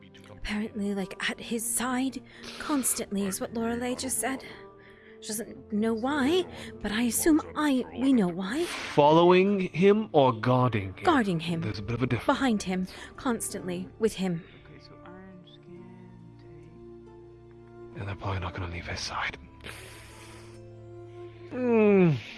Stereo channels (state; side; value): identical; both; correlation 1.00